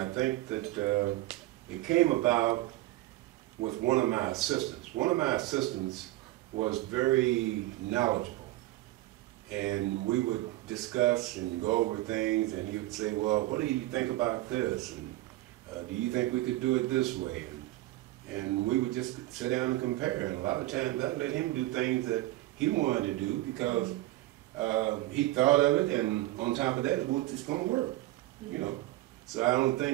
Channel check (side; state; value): left; quieter; 17.3 dB